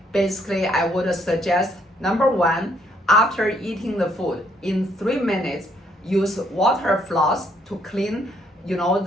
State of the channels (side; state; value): both; normal; correlation 0.69